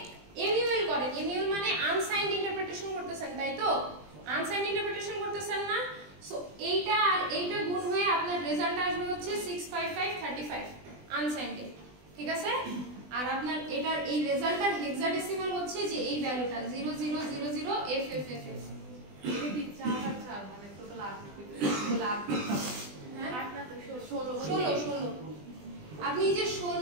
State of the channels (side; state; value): left; late; 20 ms